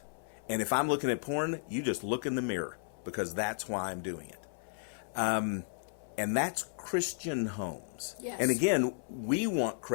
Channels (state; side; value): silent; right; 55 dB below the other